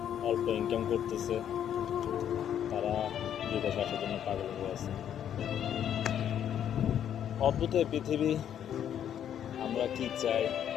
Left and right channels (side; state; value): right; quieter; 9.7 dB